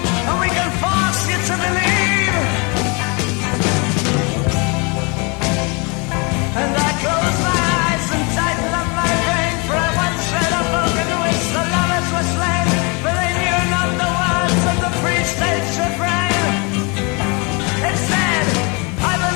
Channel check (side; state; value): right; quieter; 30.9 dB